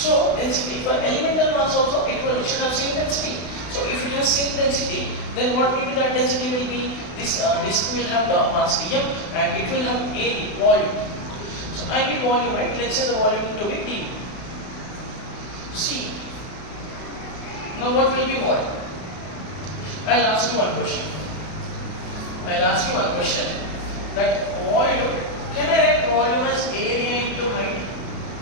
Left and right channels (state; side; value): late; right; 32 ms